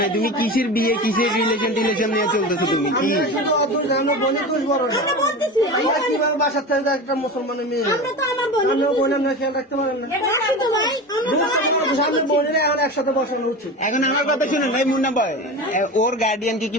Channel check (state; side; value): normal; both; correlation 0.28